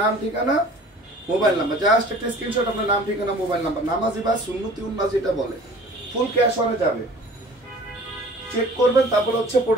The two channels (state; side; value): normal; both; correlation 0.46